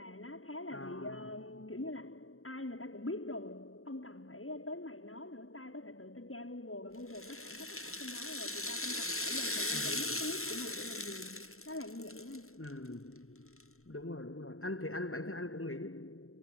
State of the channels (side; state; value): right; late; 0.62 ms